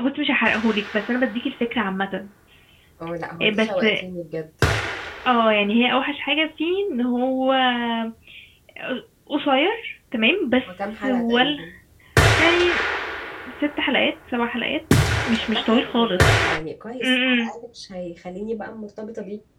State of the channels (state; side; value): identical; both; correlation 1.00